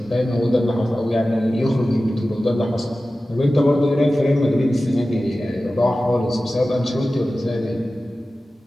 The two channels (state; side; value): normal; both; correlation 0.95